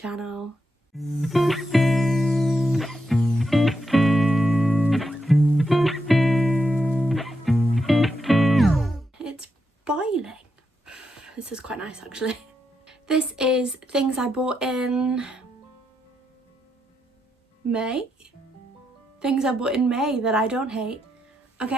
It's boiling. This is quite nice actually. This is things I bought in May? Things I bought in May that I don't hate.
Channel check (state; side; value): normal; both; correlation 0.83